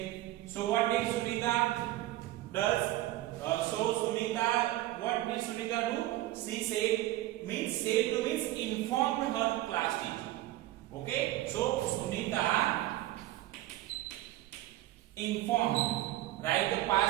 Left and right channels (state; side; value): quieter; left; 15.8 dB